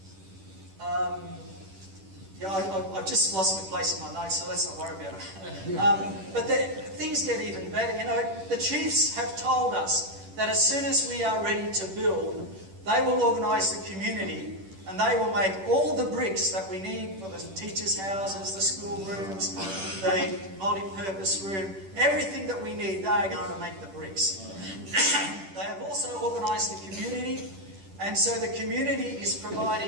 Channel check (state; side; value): late; left; 10 ms